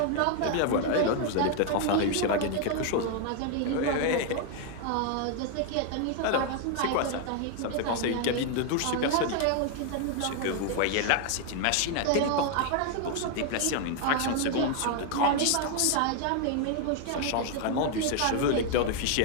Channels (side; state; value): both; different; correlation 0.00